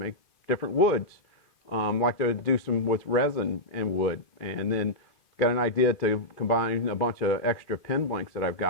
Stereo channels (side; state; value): right; late; 2.5 ms